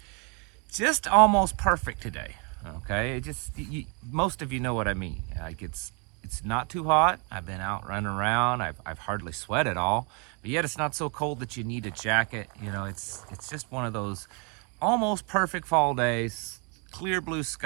almost perfect today. Okay, most of you know what I mean. Like it's not too hot. I've been out running around. I've hardly sweat at all, but yet it's not so cold that you need a jacket. You know, it's just one of those almost perfect fall days. Clear blue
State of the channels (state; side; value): quieter; left; 34.6 dB